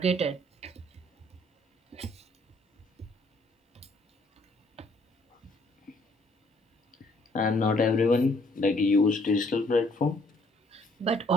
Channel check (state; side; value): normal; both; correlation 0.64